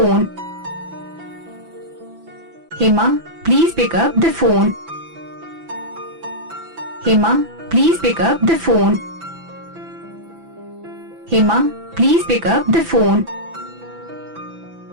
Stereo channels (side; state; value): left; late; 6.0 ms